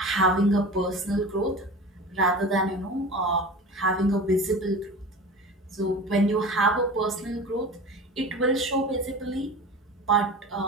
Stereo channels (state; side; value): normal; both; correlation 0.34